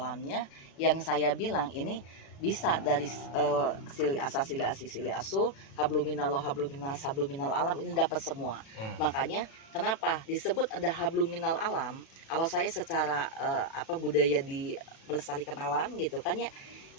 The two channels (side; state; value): right; late; 36 ms